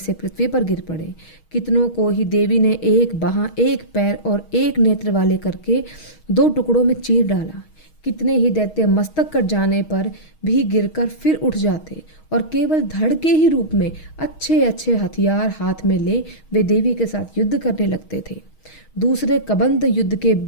पृथ्वी पर गिर पड़े। कितनों को ही देवी ने एक बाह, एक पैर और एक नेत्र वाले करके दो टुकड़ों में चीर डाला। कितने ही दैत्य मस्तक कट जाने पर भी गिरकर फिर उठ जाते और केवल धड़ के ही रूप में अच्छे अच्छे हथियार हाथ में ले वे देवी के साथ युद्ध करने लगते थे। दूसरे कबंध युद्ध के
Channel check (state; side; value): late; right; 6.3 ms